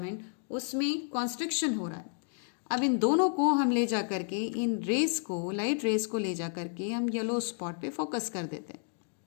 उसमें कॉन्स्ट्रिक्शन हो रहा है। अब इन दोनों को हम ले जा करके, इन रेस को, लाइट रेस को ले जा करके हम येलो स्पॉट पे फोकस कर देते हैं।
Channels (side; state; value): right; silent; 57 dB below the other